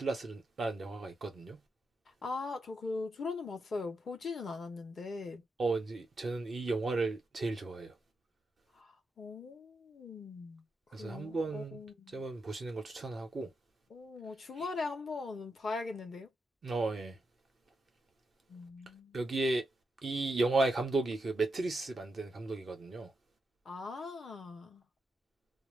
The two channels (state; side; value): normal; both; correlation 0.85